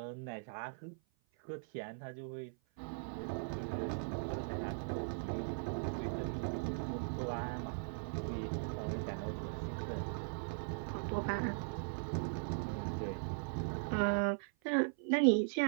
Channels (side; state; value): left; silent; 51 dB below the other